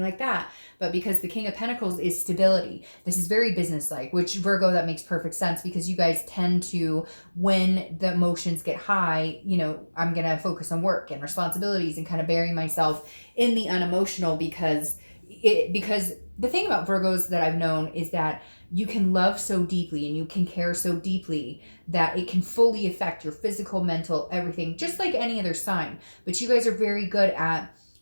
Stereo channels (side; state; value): both; inverted; correlation -1.00